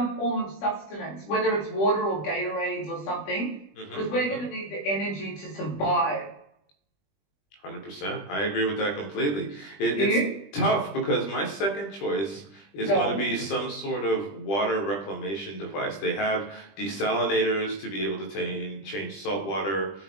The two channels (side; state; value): right; late; 20 ms